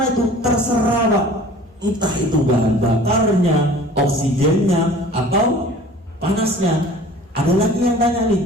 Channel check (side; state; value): both; normal; correlation 0.45